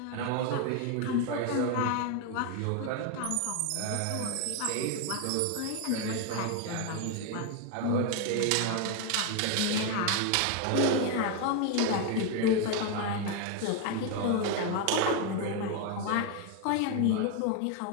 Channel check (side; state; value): both; different; correlation 0.01